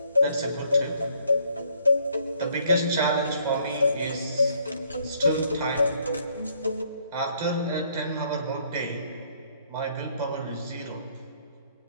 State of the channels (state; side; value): inverted; both; correlation -0.66